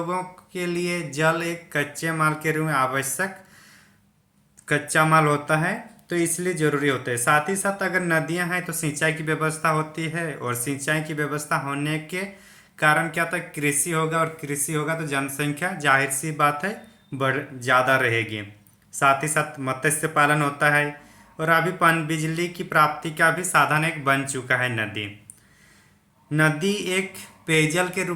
के लिए जल एक कच्चे माल के रूप में आवश्यक कच्चा माल होता है, तो इसलिए ज़रूरी होता है। साथ ही साथ अगर नदियाँ हैं तो सिंचाई की व्यवस्था होती है और सिंचाई की व्यवस्था होने के कारण क्या होता है, कृषि होगा और कृषि होगा तो जनसंख्या जाहिर सी बात है बढ़ ज़्यादा रहेगी। साथ ही साथ मत्स्य पालन होता है और अभी पन बिजली की प्राप्ति का भी साधन एक बन चुका है नदी। नदी एक पेयजल के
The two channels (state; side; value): identical; both; correlation 1.00